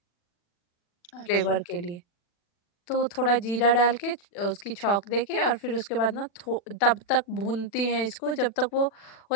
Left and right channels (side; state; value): right; late; 40 ms